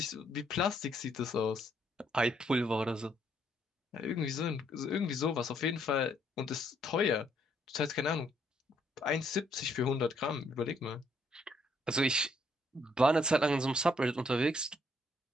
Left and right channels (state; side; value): normal; both; correlation 0.70